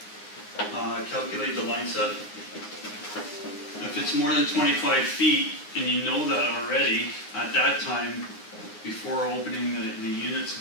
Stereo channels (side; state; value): right; late; 9.6 ms